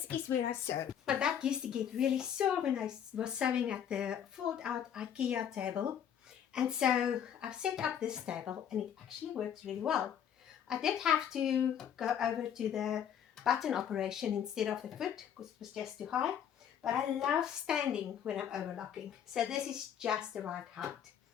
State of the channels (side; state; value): right; quieter; 9.0 dB